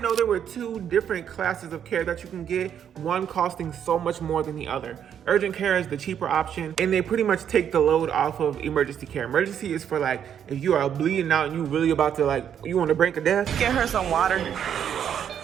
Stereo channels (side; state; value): left; quieter; 8.9 dB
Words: know there were two different classes of care that you can get, one costing so much more than the other. Urgent care is the cheaper option, and they pretty much take the load off of emergency care. Emergency is for like, if you are bleeding out and you really about to like, you on the brink of death. Get her some water.